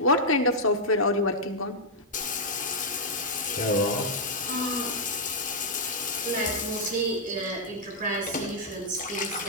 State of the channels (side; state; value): both; normal; correlation -0.05